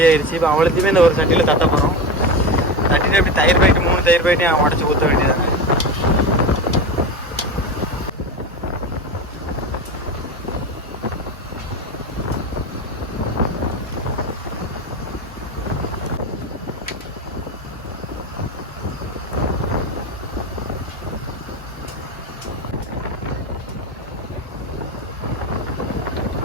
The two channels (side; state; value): both; normal; correlation 0.21